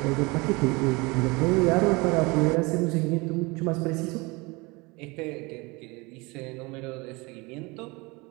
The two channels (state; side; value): quieter; left; 25.4 dB